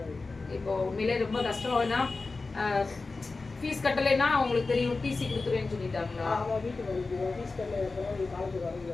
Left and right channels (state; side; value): quieter; right; 3.8 dB